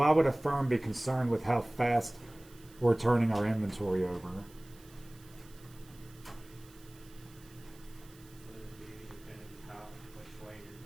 would a firm be concerned with how fast we're turning our inventory over?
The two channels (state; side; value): noise; right; hiss, 24 dB below the sound